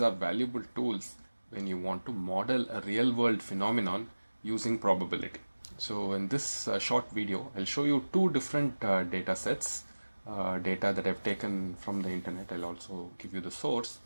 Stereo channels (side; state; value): both; inverted; correlation -1.00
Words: are valuable tools when you want to model a real-world phenomenon using probability. So in this short video, I'll show you two different data sets, data that I've taken from the internet. I'll also give you the source.